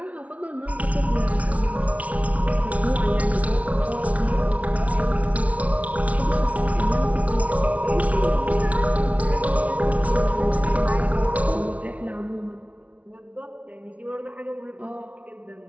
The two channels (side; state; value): left; late; 0.067 ms